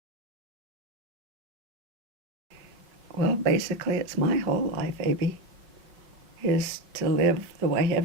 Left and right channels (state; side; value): late; left; 5.3 ms